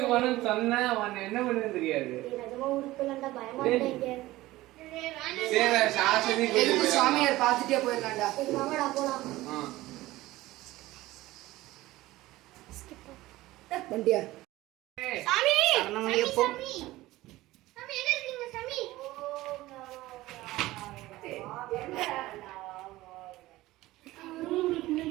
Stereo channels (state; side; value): quieter; left; 17.6 dB